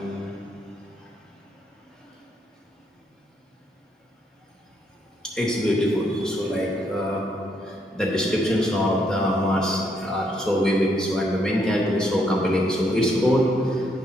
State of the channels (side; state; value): both; normal; correlation 0.73